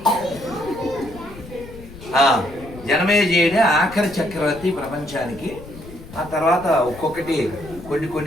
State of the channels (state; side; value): noise; left; rumble, 17 dB below the sound